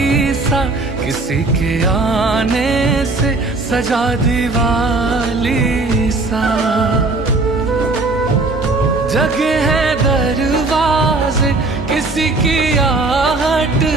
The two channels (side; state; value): left; quieter; 3.3 dB